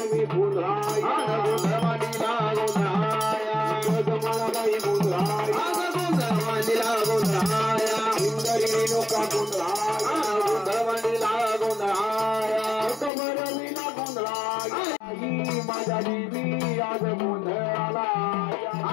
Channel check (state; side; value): drops out; right; at 13.1 s